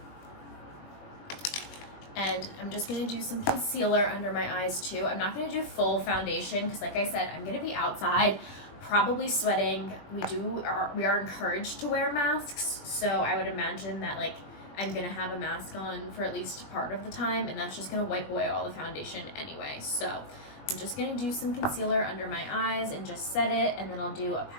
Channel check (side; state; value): right; late; 21 ms